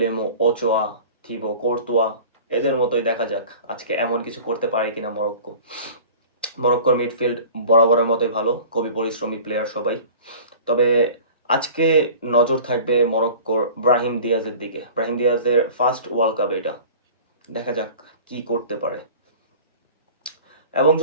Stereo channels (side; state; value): both; inverted; correlation -0.42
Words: ওচোয়া, থিবো কোর্তুয়া, এদের মতোই দেখা যাক আজকে এমন কিছু করতে পারে কিনা মরক্কো। মরক্কোর মিডফিল্ড বরাবরের মতোই ভালো, খুবই পরিশ্রমী প্লেয়ার সবাই। তবে আজকে নজর থাকবে মরক্কোর ব্রাহিম দিয়াজের দিকে। ব্রাহিম দিয়াজের ফার্স্ট ওয়ার্ল্ড কাপ এটা, দেখা যাক কি করতে পারে। এবং